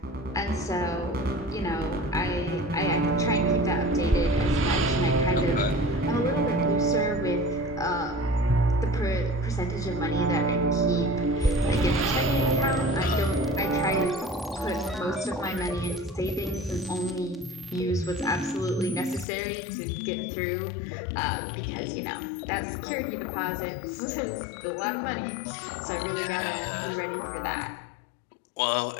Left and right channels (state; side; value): drops out; right; at 19.2 s